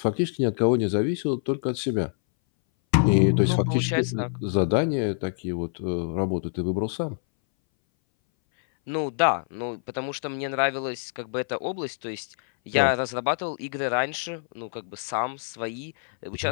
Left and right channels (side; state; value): right; silent; 60 dB below the other